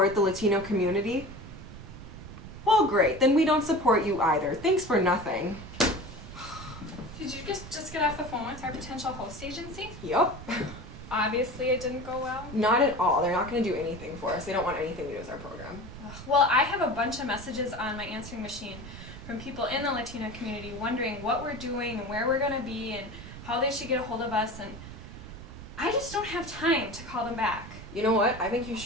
the Latino community? Well, great, then we don't support you either. Thanks for nothing. Did you just get off the phone with our potential host agency? Yup. Obviously it didn't go well. Not at all. They're not going to do anything for us. They don't want anything to do with our program. Well, I have a bunch of messages on my answering machine from people in the Latino community wondering what we're doing and where we're going to be and how they should get a hold of us, and I just don't have time to call them back. You know what? I think you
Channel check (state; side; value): noise; right; rumble, 13 dB below the sound